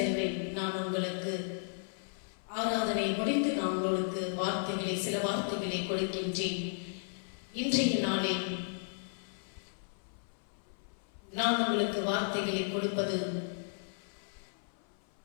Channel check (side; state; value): right; silent; 55 dB below the other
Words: நான் உங்களுக்கு ஆராதனை முடிந்து நான் உங்களுக்கு சில வார்த்தைகளை கொடுக்கின்றேன். இன்றைய நாளில் நான் உங்களுக்கு வார்த்தைகளை கொடுப்பது